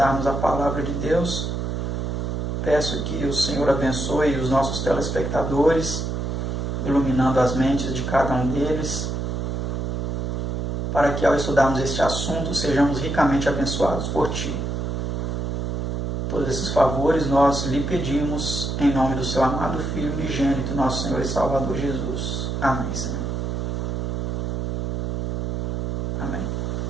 a palavra de Deus. Peço que o Senhor abençoe os nossos telespectadores, iluminando as mentes de cada um deles, para que ao estudarmos este assunto sejamos ricamente abençoados por Ti. Todos esses favores nós lhe pedimos em nome do Seu amado Filho unigênito, nosso Senhor e Salvador Jesus. Amém, Senhor. Amém.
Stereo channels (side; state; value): right; noise; hum, 1 dB below the sound